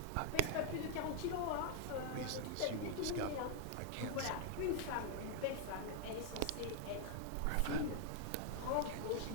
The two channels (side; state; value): both; different; correlation 0.00